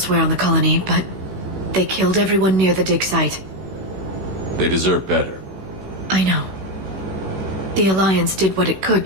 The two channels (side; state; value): left; late; 16 ms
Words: on the colony, but they killed everyone near the dig site. They deserve better. I know. The Alliance did what it could